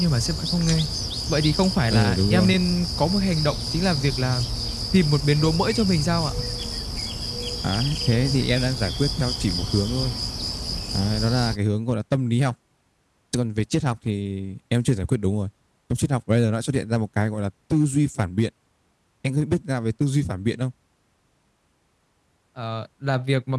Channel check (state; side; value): identical; both; correlation 1.00